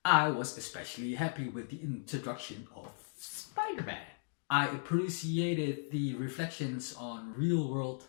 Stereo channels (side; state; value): right; silent; digital silence